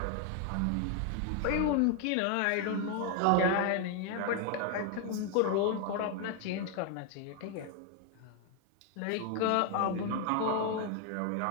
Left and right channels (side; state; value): both; different; correlation 0.01